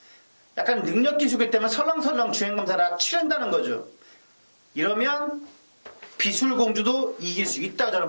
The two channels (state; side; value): inverted; both; correlation -1.00